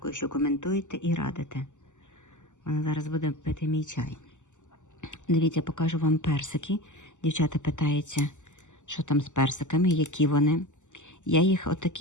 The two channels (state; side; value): late; right; 0.85 ms